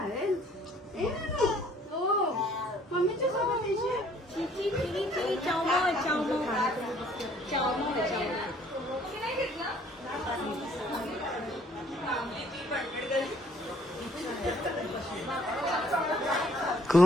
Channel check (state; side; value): normal; both; correlation 0.59